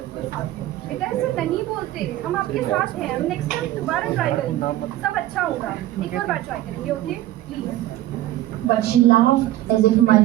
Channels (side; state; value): left; quieter; 14.6 dB